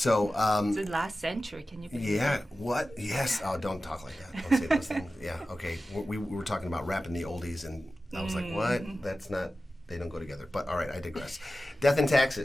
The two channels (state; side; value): normal; both; correlation 0.94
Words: it's the last century, can you believe yeah, that? what? Yes. Oh, don't talk like that. Don't say those things. Yeah, okay. We were talking about rapping the oldies, and I was like, what? That's not, they don't go together. But all right, I digress. Death and